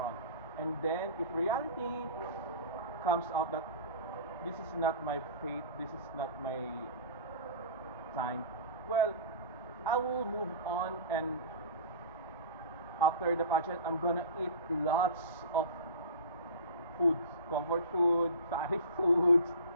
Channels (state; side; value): inverted; both; correlation -0.36